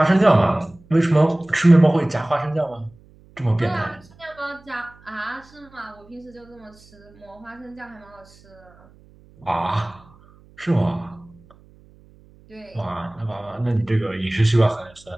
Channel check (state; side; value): noise; right; hum, 27 dB below the sound